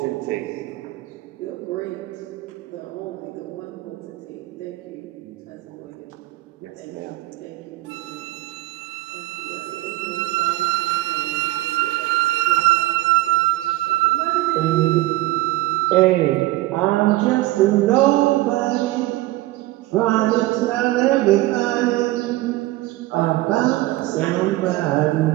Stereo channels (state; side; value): quieter; left; 18.0 dB